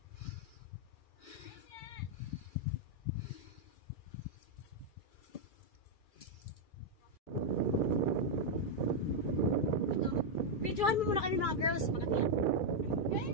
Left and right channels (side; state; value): right; late; 2.3 ms